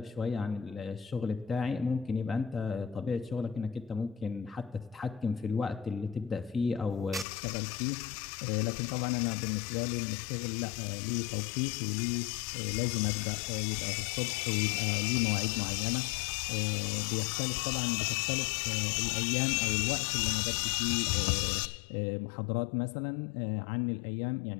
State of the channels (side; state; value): right; drops out; at 7.2 s